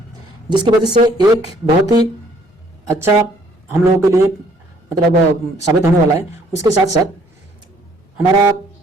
जिसकी वजह से एक बहुत ही अच्छा हम लोगों के लिए मतलब साबित होने वाला है। उसके साथ साथ हमारा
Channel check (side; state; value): both; normal; correlation 0.62